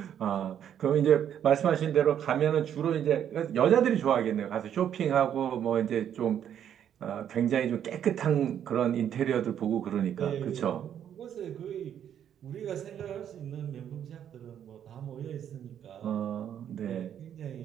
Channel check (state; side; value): quieter; left; 9.5 dB